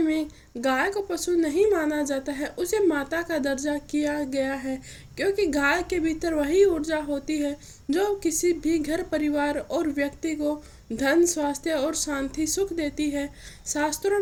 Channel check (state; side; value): identical; both; correlation 1.00